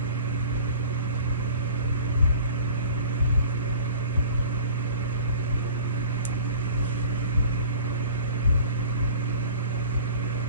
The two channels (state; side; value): inverted; both; correlation -0.44